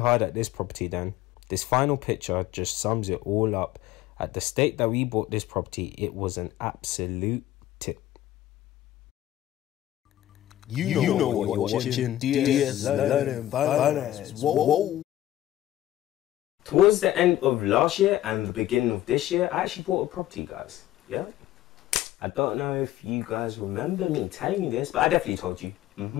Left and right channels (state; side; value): quieter; right; 13.8 dB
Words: at this property then. This final picture just sums it all up. At the state that we bought this property, it was an absolute tip. You know what you're watching. DS Learning Finance. Whoa. Towards the end of last year and the beginning of this year, I actually bought a property, guys. Yeah? I don't know if you guys remember me telling you this, but I definitely told you.